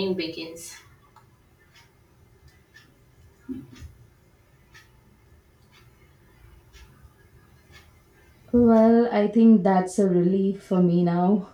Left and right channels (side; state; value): both; identical; correlation 1.00